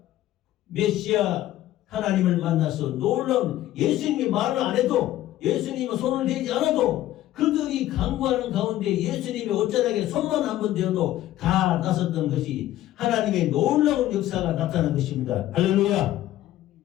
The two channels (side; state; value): right; quieter; 14.1 dB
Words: 메시아 하나님을 만나서 놀라운, 예수님이 말을 안 해도 예수님은 손을 대지 않아도 그들이 간구하는 가운데 예수님의 옷자락에 손만 한번 대어도 다 나섰던 것이 하나님의 놀라운 역사가 나타난 것입니다. 할렐루야.